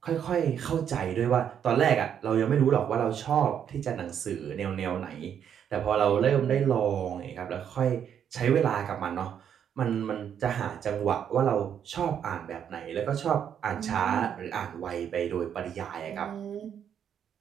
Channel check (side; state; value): left; quieter; 8.7 dB